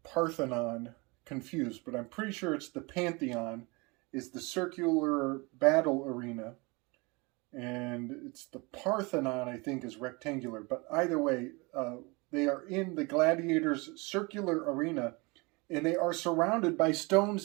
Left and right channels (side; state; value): left; quieter; 27.0 dB